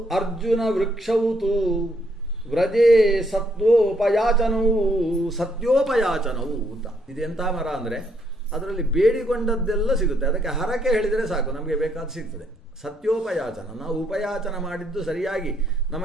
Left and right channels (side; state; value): both; normal; correlation 0.72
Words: ಅರ್ಜುನ ವೃಕ್ಷೌತು ವ್ರಜೇ ಸತ್ಯೋಪಯಾಚನವು ಅಂತ. ಇದೆಂಥ ಮರ ಅಂದರೆ ಅದರಲ್ಲಿ ಬೇಡಿಕೊಂಡದ್ದೆಲ್ಲ ಸಿಗುತ್ತೆ. ಅದಕ್ಕೆ ಹರಕೆ ಹೇಳಿದರೆ ಸಾಕು, ನಮಗೆ ಬೇಕಾದ ಸಿಗ್ತದೆ. ಸತ್ಯೋಪಯಾಚನ, ನಾವು ಉಪಯಾಚನ ಮಾಡಿದ್ದು ಸರಿಯಾಗಿ